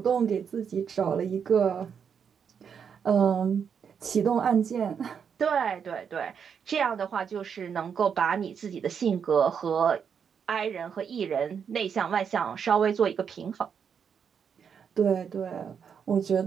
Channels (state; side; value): quieter; left; 7.1 dB